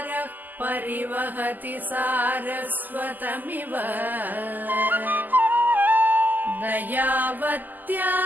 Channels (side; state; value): left; late; 0.085 ms